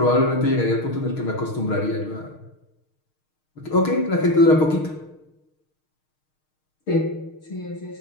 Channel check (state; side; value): late; right; 6.5 ms